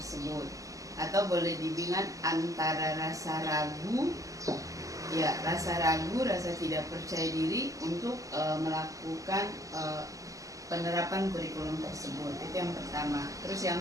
atau boleh dibilang antara rasa ragu, rasa tidak percaya diri untuk melakukan penerapan kurikulum tersebut. Itu yang pertama. Terus yang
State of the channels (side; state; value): left; late; 0.16 ms